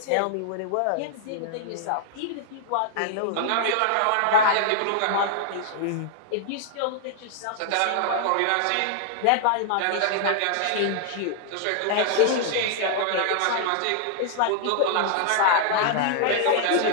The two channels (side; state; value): both; different; correlation -0.01